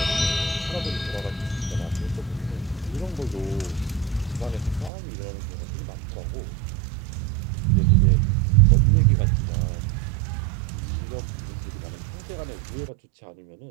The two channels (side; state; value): left; drops out; at 4.9 s